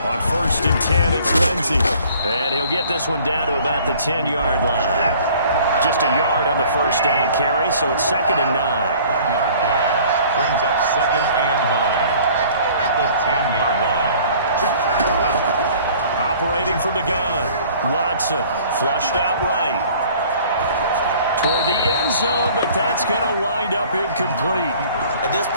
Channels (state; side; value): inverted; both; correlation -0.52